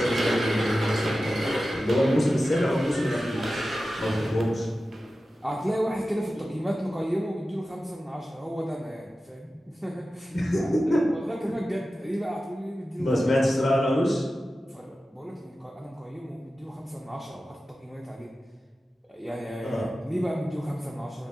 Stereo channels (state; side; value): normal; both; correlation 0.94